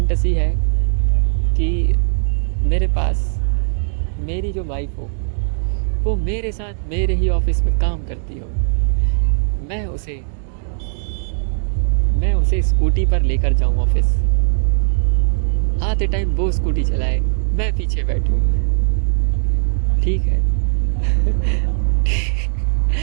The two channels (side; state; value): left; silent; digital silence